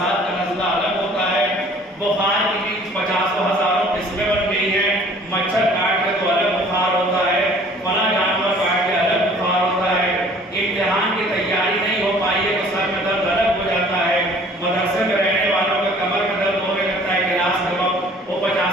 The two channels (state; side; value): normal; both; correlation 0.53